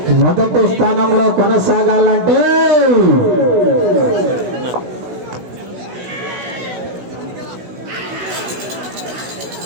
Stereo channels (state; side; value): late; left; 16 ms